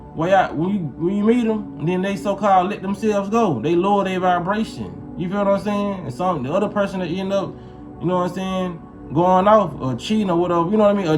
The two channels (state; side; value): identical; both; correlation 1.00